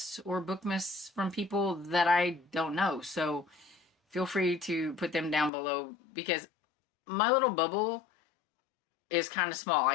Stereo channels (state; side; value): drops out; right; at 5.5 s